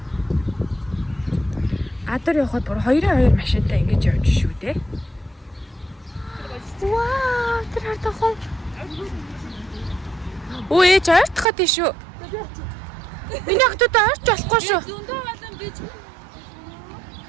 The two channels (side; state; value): left; drops out; at 11.5 s